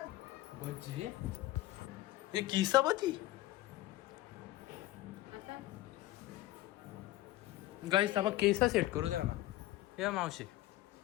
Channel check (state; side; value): quieter; right; 16.5 dB